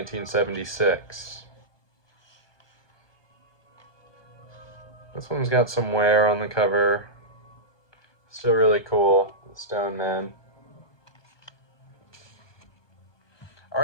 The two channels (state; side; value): late; right; 1.2 ms